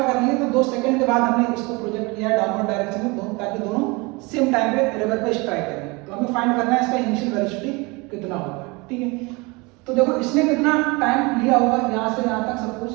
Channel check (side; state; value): left; quieter; 26.3 dB